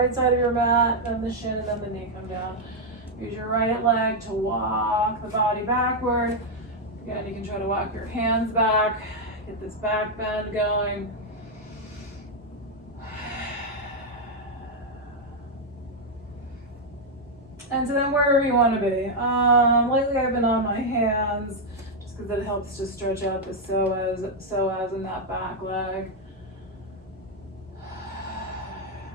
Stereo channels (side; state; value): both; normal; correlation 0.00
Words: side of your mat. Then the shin and then the knee come down. Use your right leg to walk the body backward. Again, you can try to walk your hands back. Get this back bend going. And so then wherever you want to be. Lately I've been on my hands just because it helps to stretch out the psoas in that back leg.